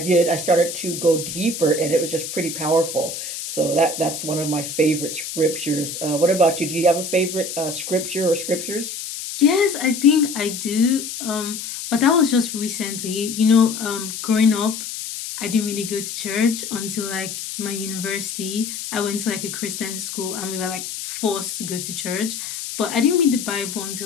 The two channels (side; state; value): left; noise; hiss, 7 dB below the sound